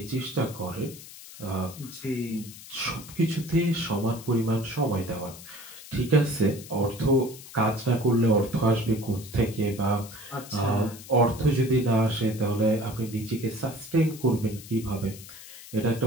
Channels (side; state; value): left; noise; hiss, 16 dB below the sound